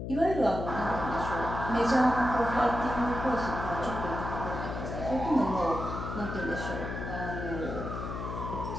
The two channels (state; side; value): noise; left; hum, 6 dB below the sound